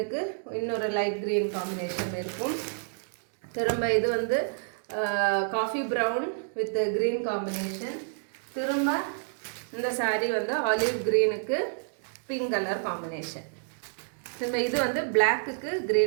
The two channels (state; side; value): silent; left; digital silence